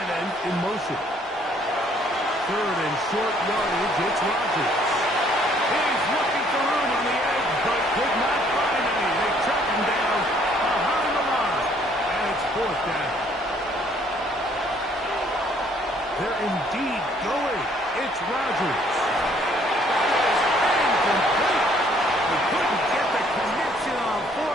end in motion. Third and short yardage, it's Rodgers. He's looking for room on the edge, but could not find any. They track him down behind the line, and it's fourth down. They're indeed going. It's Rodgers. That is incomplete. They couldn't get the connection on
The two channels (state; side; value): normal; both; correlation 0.63